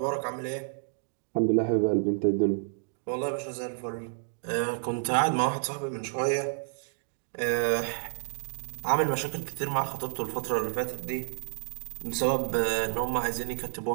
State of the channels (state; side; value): silent; left; digital silence